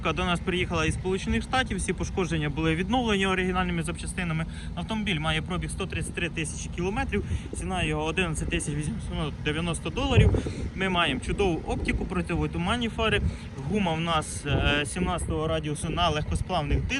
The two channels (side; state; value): both; identical; correlation 1.00